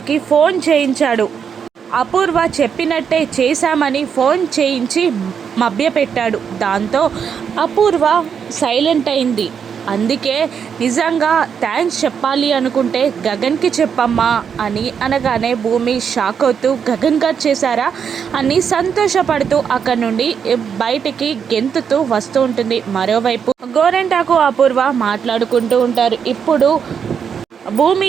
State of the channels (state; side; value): quieter; left; 7.2 dB